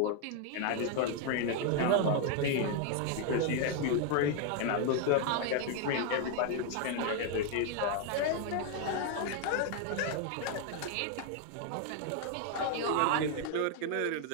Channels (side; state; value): both; different; correlation 0.00